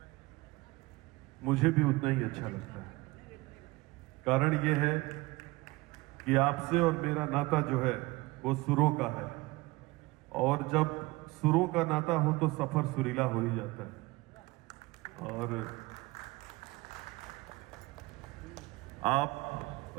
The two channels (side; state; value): left; quieter; 21.8 dB